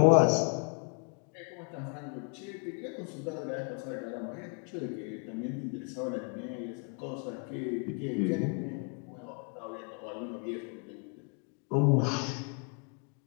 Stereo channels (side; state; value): right; quieter; 36.3 dB